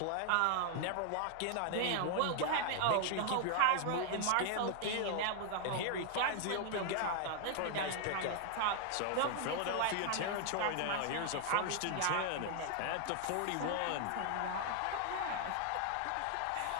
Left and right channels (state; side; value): different; both; correlation 0.00